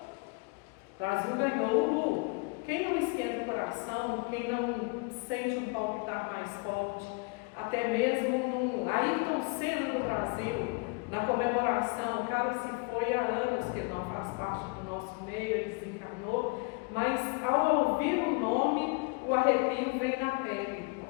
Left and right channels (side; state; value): right; quieter; 30.6 dB